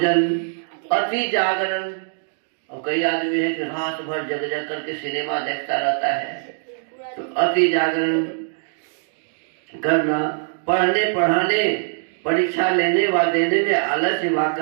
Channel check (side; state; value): left; silent; digital silence